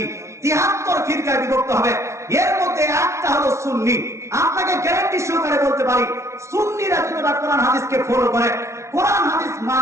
73 ফিরকায় বিভক্ত হবে। এর মধ্যে একটা হলো সুন্নি। আপনাকে গ্যারান্টি সহকারে বলতে পারি, সুন্নিরা যতটা কোরআন হাদিসকে ফলো করে, কোরআন হাদিস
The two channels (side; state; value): left; late; 0.13 ms